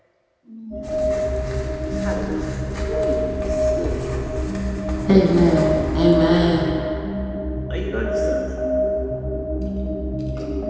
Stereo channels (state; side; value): identical; both; correlation 1.00